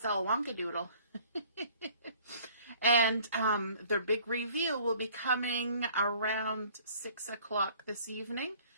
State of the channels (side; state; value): both; inverted; correlation -0.54